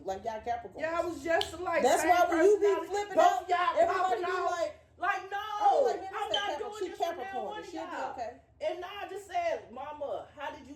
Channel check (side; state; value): both; identical; correlation 1.00